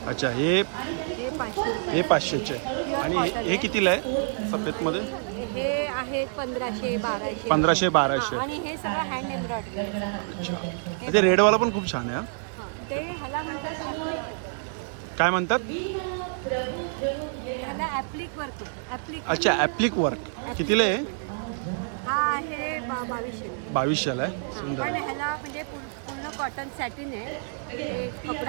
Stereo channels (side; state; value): left; silent; digital silence